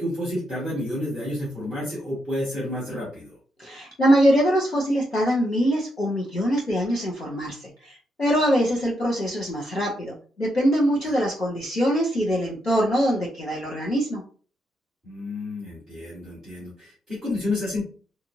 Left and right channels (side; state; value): both; normal; correlation 0.80